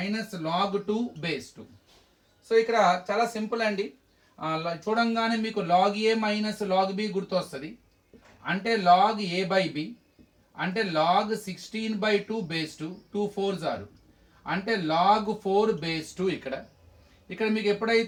log 2 base 2. So ఇక్కడ చాలా సింపుల్ అండి. చూడంగానే మీకు log A minus log B గుర్తొస్తుంది. అంటే లాగ్ ఏ బై బి అంటే లాగ్ 16/2 బేస్ 2, 2 4s ఆరు, అంటే లాగ్ 4 బేస్ 2. ఇక్కడ మీకు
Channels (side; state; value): both; identical; correlation 1.00